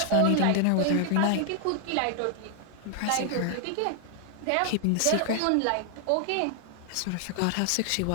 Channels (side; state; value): both; different; correlation 0.00